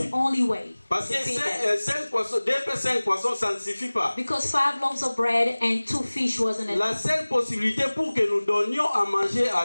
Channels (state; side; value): inverted; both; correlation -1.00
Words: only way Parce to que feed them. 5 poissons, 2 pains, 5 poissons, ça ne suffit pas. Because 5 loaves of bread and 2 fish wasn't enough. La seule possibilité pour que nous donnions à manger à